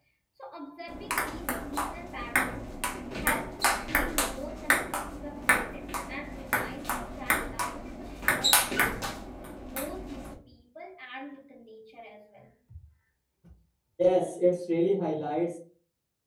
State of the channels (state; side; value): identical; both; correlation 1.00